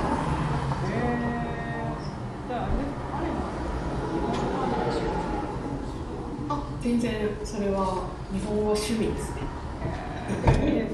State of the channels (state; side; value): identical; both; correlation 1.00